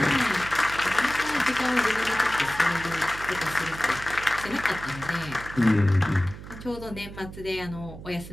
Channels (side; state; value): right; noise; hum, 13 dB below the sound